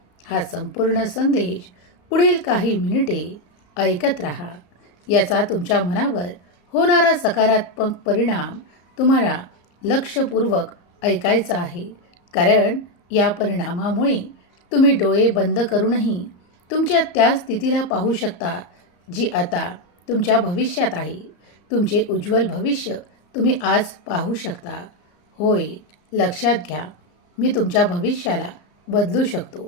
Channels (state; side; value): late; right; 34 ms